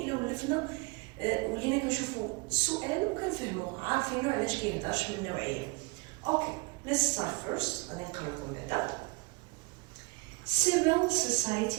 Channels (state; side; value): quieter; left; 28.9 dB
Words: ولفنا ولينا كنشوفوا السؤال وكنفهموه، عارفينو علاش كيهضرش من النوعيه. اوكي، let's start first. غادي نقرا لكم بعدا. Civil